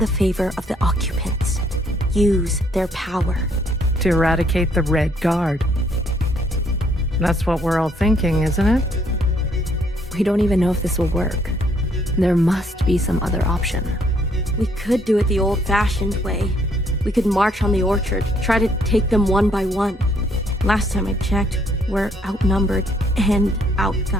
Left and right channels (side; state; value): both; normal; correlation 0.67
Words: favor of the occupants. Use their power. To eradicate the Red Guard. That's what we're all thinking, isn't it? We don't even know if this will work. There must be some other option. We could do it the old-fashioned way. We could march on the orchard, try to take them one by one. Last time I checked, we're outnumbered and